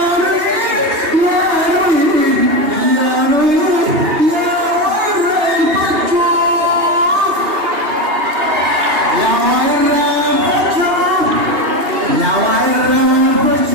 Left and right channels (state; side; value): late; left; 2.8 ms